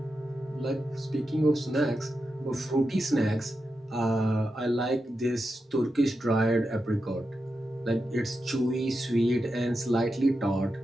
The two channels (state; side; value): normal; both; correlation 0.89